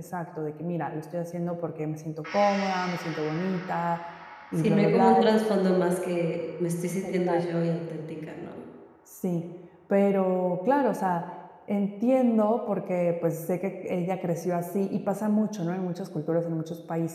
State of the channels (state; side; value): identical; both; correlation 1.00